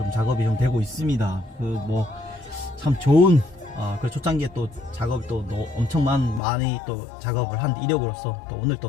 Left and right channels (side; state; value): right; drops out; at 6.4 s